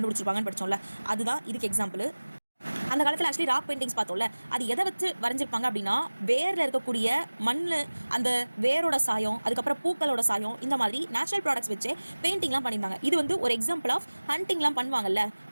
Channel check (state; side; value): inverted; both; correlation -1.00